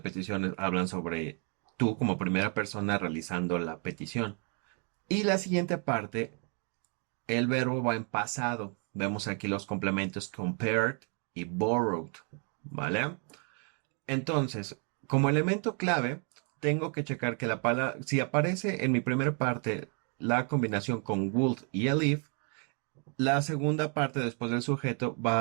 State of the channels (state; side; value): quieter; left; 38.7 dB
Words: hablan sobre tú como primera persona realizando la petición. Y la siguiente parte, el verbo va en pasado. Vemos aquí los complementos compared y borrowed, ¿vale? Entonces, como elemento clave, tengo que checar que la palabra, si aparece en mi primera parte la combinación con would y el if, la segunda parte después del sujeto